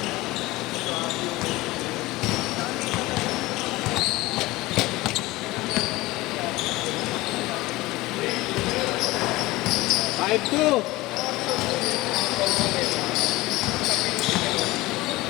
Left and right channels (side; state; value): right; quieter; 19.7 dB